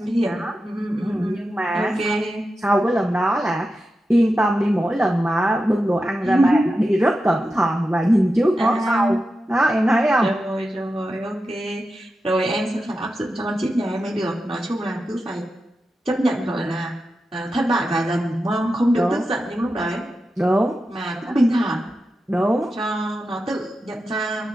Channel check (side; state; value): both; normal; correlation 0.91